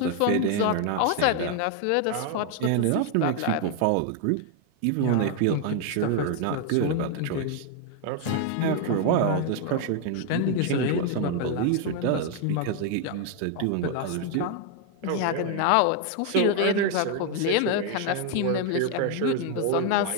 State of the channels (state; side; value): different; both; correlation 0.01